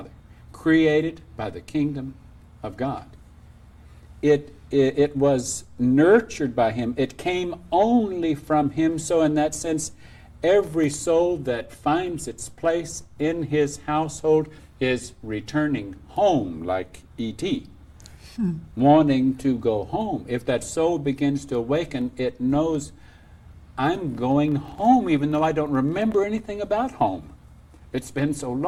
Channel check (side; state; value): both; identical; correlation 1.00